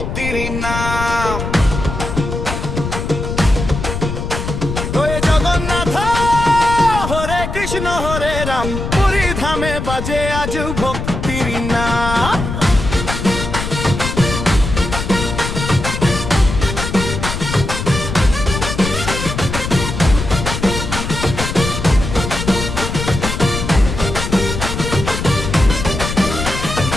নাম জয় জগন্নাথ হরে কৃষ্ণ হরে রাম পুরী ধামে বাজে আজ ভক্তির নাম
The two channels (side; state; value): left; noise; rumble, 5 dB below the sound